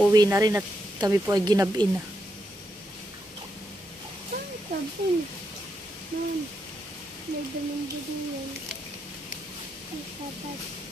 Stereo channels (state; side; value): normal; both; correlation 0.82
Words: na rin at kami po ay ginabin na. Sabon. Ma'am, may damang din yan. May sapat.